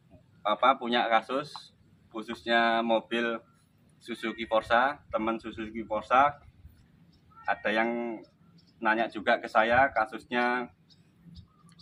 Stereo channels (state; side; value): identical; both; correlation 1.00